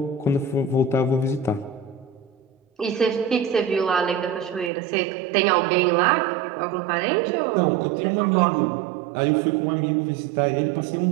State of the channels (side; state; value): left; drops out; at 4.7 s